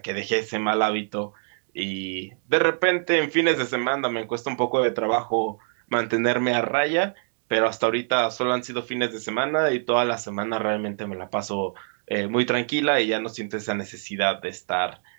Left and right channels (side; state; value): left; silent; digital silence